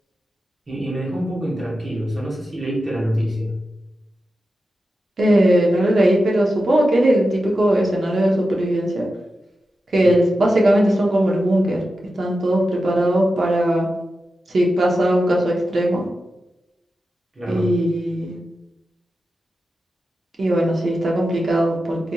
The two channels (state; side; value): normal; both; correlation 0.91